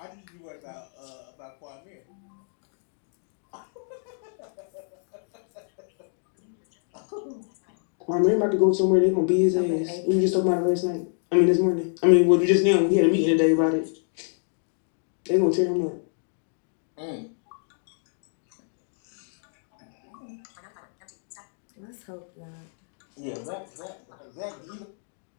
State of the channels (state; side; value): silent; right; digital silence